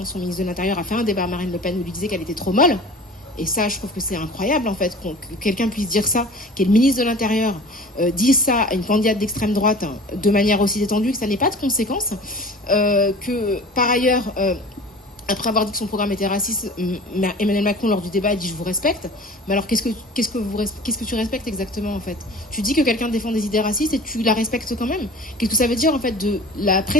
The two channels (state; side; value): normal; both; correlation 0.41